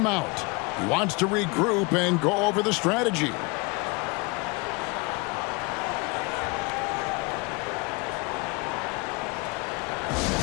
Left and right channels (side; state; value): right; quieter; 28.4 dB